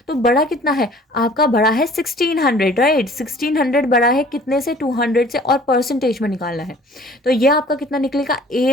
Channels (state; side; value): normal; both; correlation 0.51